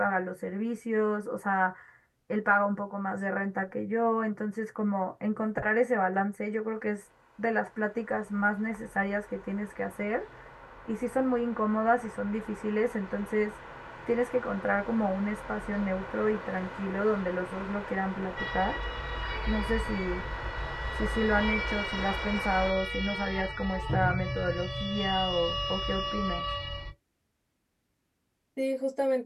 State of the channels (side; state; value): both; identical; correlation 1.00